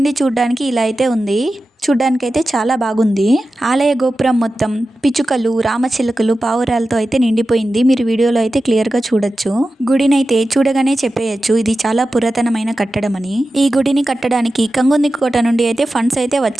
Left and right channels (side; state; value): both; normal; correlation 0.93